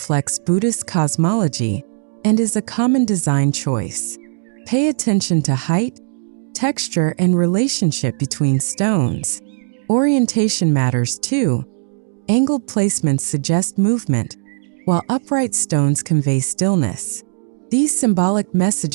Buddhist cosmology and is a common design choice. Pay attention to height, texture, and relationship between stones. Orientation matters too. Angled placements suggest movement, while upright stones convey stillness. These symbolic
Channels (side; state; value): left; silent; digital silence